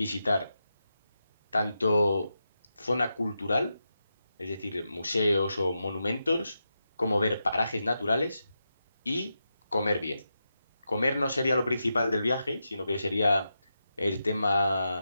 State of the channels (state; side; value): inverted; both; correlation -0.88